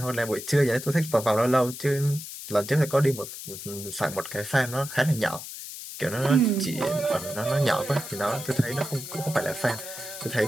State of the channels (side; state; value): left; noise; hiss, 10 dB below the sound